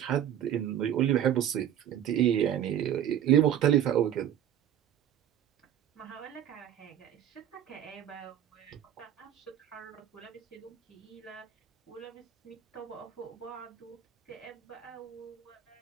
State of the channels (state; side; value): quieter; left; 10.5 dB